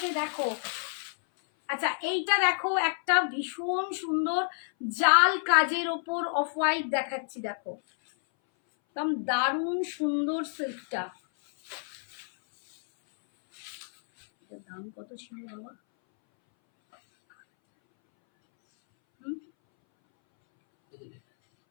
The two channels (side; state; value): right; silent; 58 dB below the other